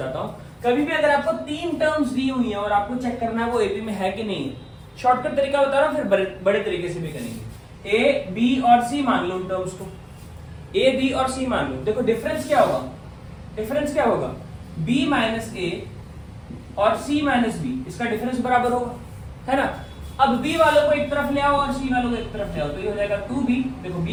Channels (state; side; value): identical; both; correlation 1.00